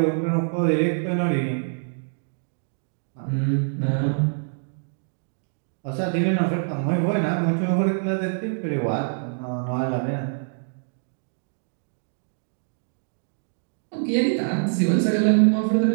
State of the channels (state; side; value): silent; left; digital silence